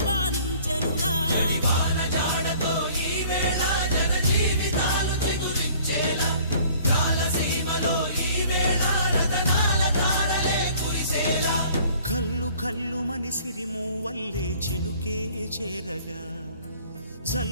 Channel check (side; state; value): both; inverted; correlation -0.53